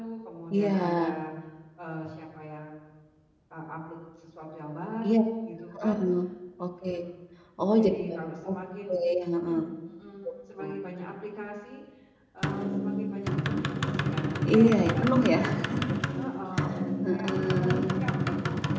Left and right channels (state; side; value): identical; both; correlation 1.00